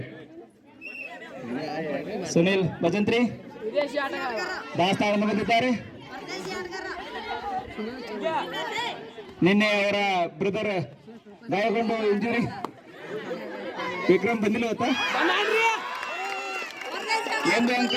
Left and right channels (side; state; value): both; identical; correlation 1.00